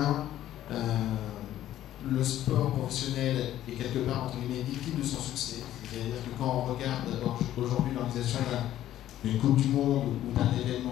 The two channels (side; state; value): right; quieter; 12.7 dB